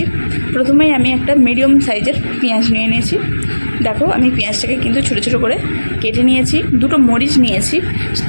প্রথমেই আমি একটা মিডিয়াম সাইজের পেঁয়াজ নিয়ে নিয়েছি। দেখো, আমি পেঁয়াজটাকে কিন্তু ছোটো ছোটো করে কেটে নিয়েছি। দুটো মরিচ নিয়েছি,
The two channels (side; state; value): both; inverted; correlation -1.00